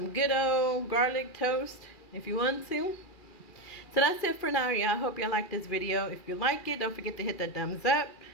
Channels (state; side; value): late; right; 2.4 ms